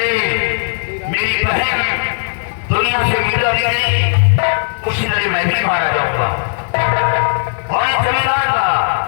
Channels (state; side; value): silent; right; digital silence